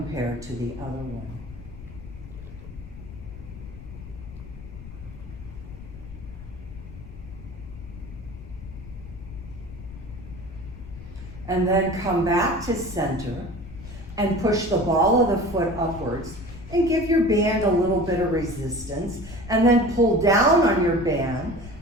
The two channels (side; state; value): left; noise; rumble, 14 dB below the sound